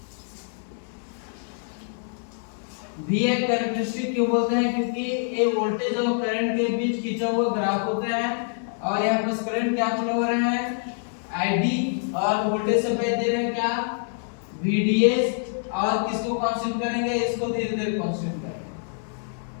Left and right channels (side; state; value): right; silent; digital silence